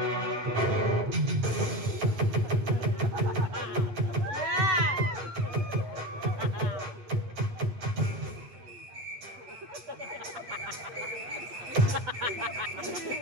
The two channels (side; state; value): left; late; 8.0 ms